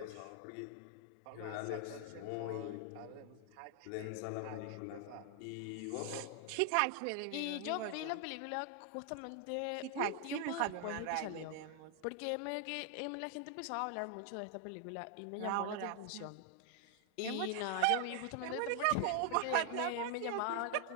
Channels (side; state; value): both; different; correlation 0.00